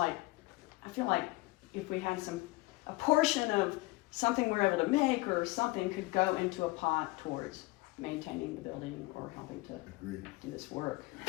I feel like if we had a portion of something we're able to make or something could go into a pot towards maintaining the building or helping to Agreed. do this work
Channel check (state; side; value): quieter; right; 22.3 dB